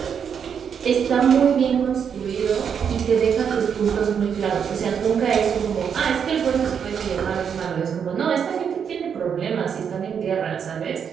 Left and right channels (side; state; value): left; quieter; 7.4 dB